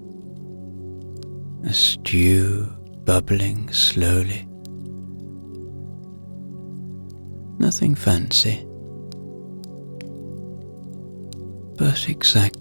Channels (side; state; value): both; inverted; correlation -1.00